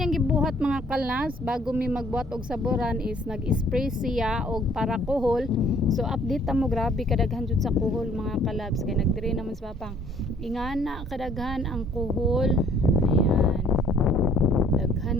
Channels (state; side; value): normal; both; correlation 0.60